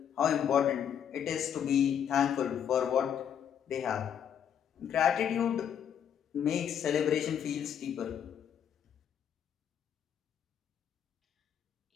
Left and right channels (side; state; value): right; quieter; 8.8 dB